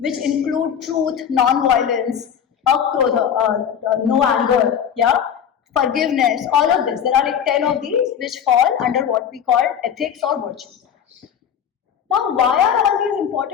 include truth, non-violence, akrodha, no anger, yeah, forgiveness, all of this. There are like 10 of these which fall under what we call ethics or virtues. Now, why are all these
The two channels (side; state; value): right; quieter; 8.3 dB